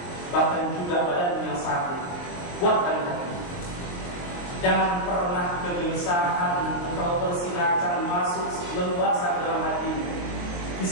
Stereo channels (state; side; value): late; right; 23 ms